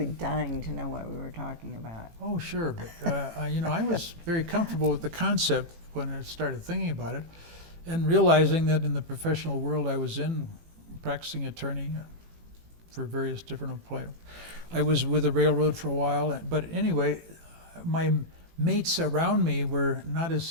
dying to know what we were talking about. Oh, sure, but I was very comfortable with the concept when I started thinking about it, and realizing that in the professional world I was in, practicing attorney for various different employers. I was with the railroad for a while, but anyway, my mates around me were not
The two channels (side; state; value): left; late; 18 ms